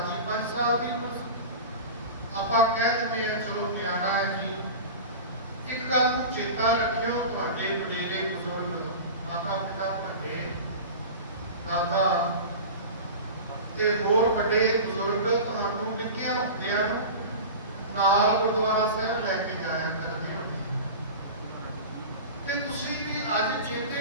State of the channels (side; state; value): both; inverted; correlation -0.32